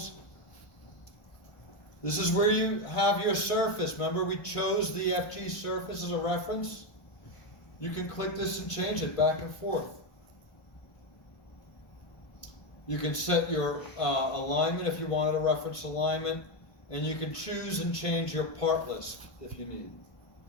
This is where you have your surface. Remember, we chose the FG surface as a reference? You can click this and change it back and forth. You can set your alignment if you wanted a reference alignment, and you can choose and change your part list if you need.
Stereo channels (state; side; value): late; right; 1.5 ms